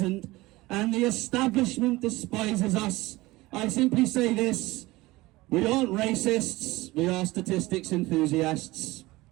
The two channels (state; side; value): quieter; left; 19.9 dB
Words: and the establishment despises us. I simply say this: we aren't racists, we are statistics enthusiasts.